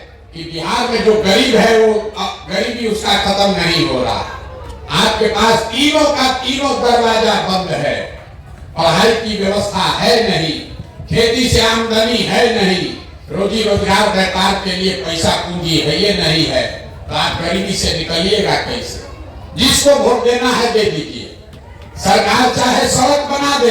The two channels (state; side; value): identical; both; correlation 1.00